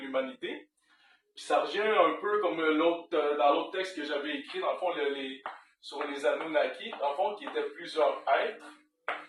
Puis ça revient un peu comme dans l'autre texte que j'avais écrit, dans le fond, sur les Anunnaki, dans le fond, qui étaient plusieurs êtres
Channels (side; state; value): both; identical; correlation 1.00